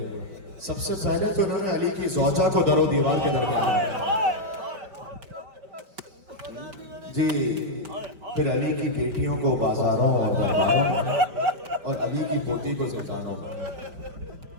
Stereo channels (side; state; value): left; late; 5.0 ms